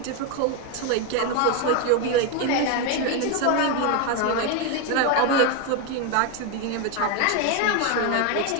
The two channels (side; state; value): both; different; correlation 0.02